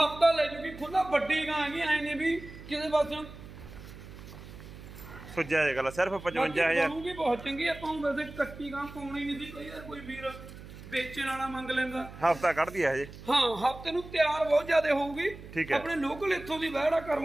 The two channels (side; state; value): right; noise; hum, 15 dB below the sound